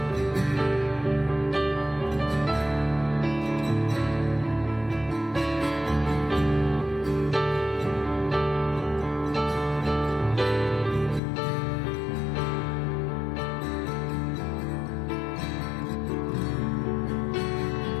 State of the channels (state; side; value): drops out; right; at 11.2 s